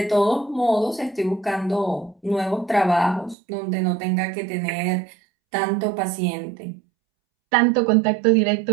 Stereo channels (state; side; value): drops out; left; at 3.4 s